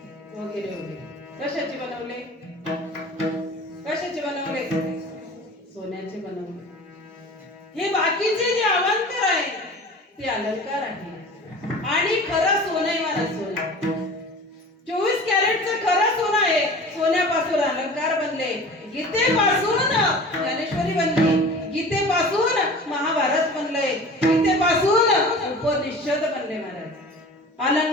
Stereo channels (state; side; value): normal; both; correlation 0.39